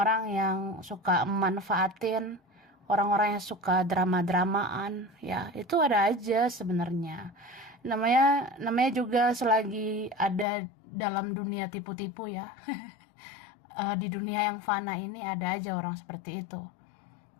yang suka manfaatin, orang-orang yang suka drama-dramaan, ya itu ada aja sebenarnya. Namanya juga selagi ada dalam dunia tipu-tipu ya. Di dunia yang fana ini ada aja orang seperti itu.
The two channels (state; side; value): drops out; right; at 10.5 s